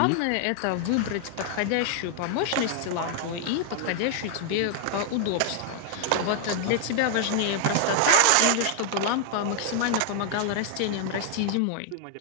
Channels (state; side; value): different; both; correlation 0.00